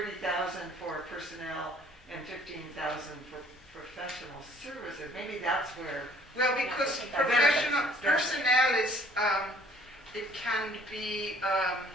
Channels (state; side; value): normal; both; correlation 0.56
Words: for personnel and 15,000 for professional services? Maybe that's where. Well, because Benefits. professional personnel is, it can be,